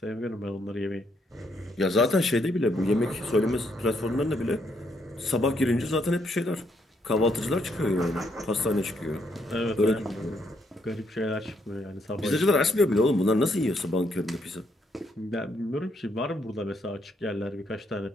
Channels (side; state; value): both; normal; correlation 0.74